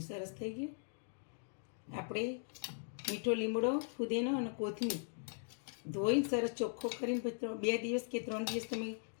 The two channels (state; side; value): silent; right; digital silence